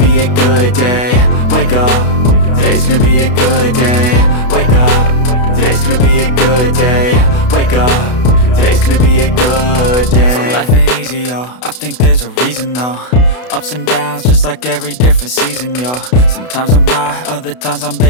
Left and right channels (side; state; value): right; late; 32 ms